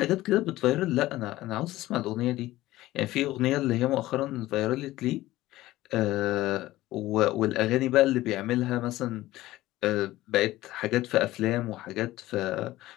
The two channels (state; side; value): quieter; right; 16.6 dB